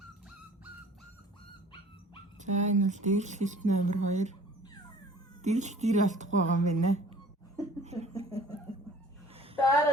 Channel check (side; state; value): both; normal; correlation 0.49